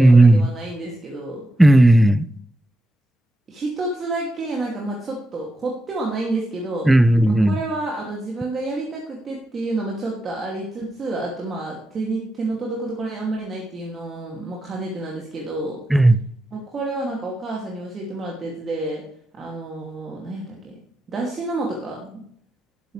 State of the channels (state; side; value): normal; both; correlation 0.88